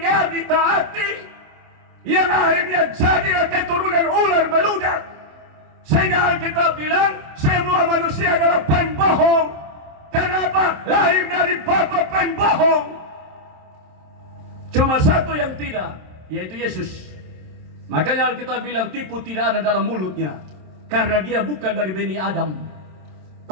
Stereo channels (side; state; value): left; late; 27 ms